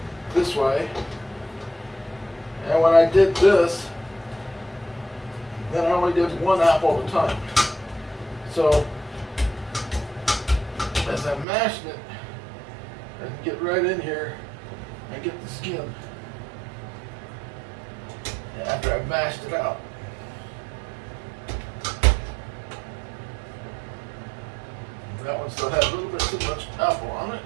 this way. And when I did this, then I only did one apple at a time. So as I'm mashing it, I can get right in here and get the skin after I've mashed it out. That one still had a little bit too much apple on it.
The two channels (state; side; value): drops out; left; at 11.5 s